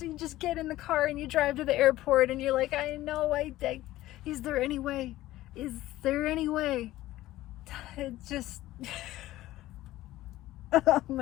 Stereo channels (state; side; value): quieter; right; 15.9 dB